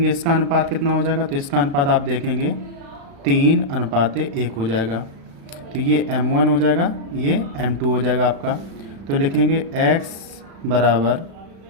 इसका अनुपात कितना हो जाएगा। तो इसका अनुपात आप देखेंगे 3:1 हो जाएगा। तो ये m1 हो जाएगा, ये m2 हो जाएगा आपका। तो लिखेंगे x बराबर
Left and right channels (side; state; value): left; late; 35 ms